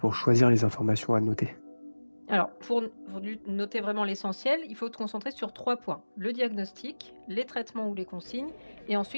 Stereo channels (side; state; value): both; inverted; correlation -1.00